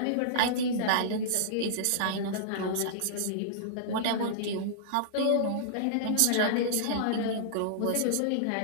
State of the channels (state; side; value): different; both; correlation -0.02